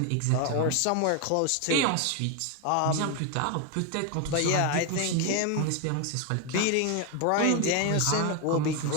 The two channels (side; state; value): both; different; correlation 0.01